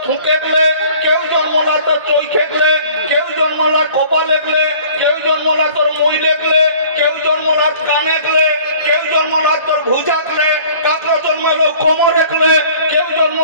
ফুঁকে গেলে, কেউ জন্মলা তোর চৈখে গেলে, কেউ জন্মলা কপালে গেলে, কেউ জন্মলা তোর মইলে গেলে, কেউ জন্মলা কানে গেলে, কেউ জন্মলা তোর ভুজা গেলে, কাকড়া জন্মালো কোমরে গেলে, কেউ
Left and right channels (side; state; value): both; inverted; correlation -0.50